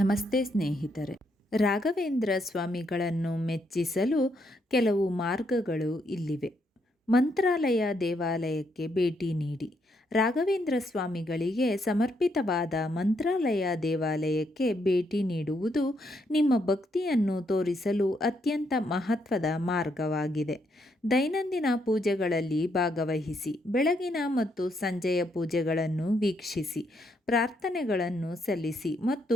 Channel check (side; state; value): both; normal; correlation 0.76